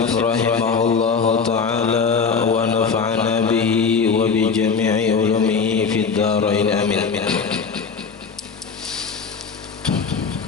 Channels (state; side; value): quieter; right; 5.5 dB